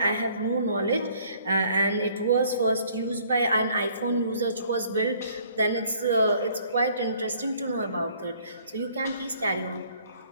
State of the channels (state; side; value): inverted; both; correlation -0.59